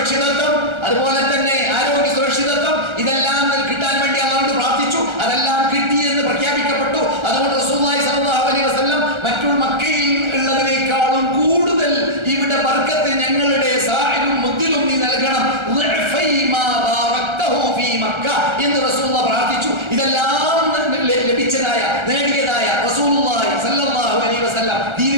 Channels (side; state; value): left; late; 1.3 ms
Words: അതുപോലെ തന്നെ ആരോഗ്യ സുരക്ഷിതത്വം, ഇതെല്ലാം കിട്ടാൻ വേണ്ടി അല്ലാഹുവോട് പ്രാർത്ഥിച്ചു. അതെല്ലാം കിട്ടി എന്ന് പ്രഖ്യാപിക്കപ്പെട്ടു. അതുകൊണ്ട് റസൂലുള്ളാഹി സ്വല്ലല്ലാഹു അലൈഹി വസല്ലം മറ്റുള്ള മക്കയിൽ ഉള്ളതിനേക്കാളും കൂടുതൽ ഇവിടെ ബർക്കത്ത് ഞങ്ങളുടെ സാഹിലും മുദ്ദിലും നീ നൽകണം എന്ന് റസൂലുള്ളാഹി പ്രാർത്ഥിച്ചു. ഇതെല്ലാം ലഭിച്ചതായ, നേടിയതായ റസൂലുള്ളാഹി സ്വല്ലല്ലാഹു അലൈഹി വസല്ലം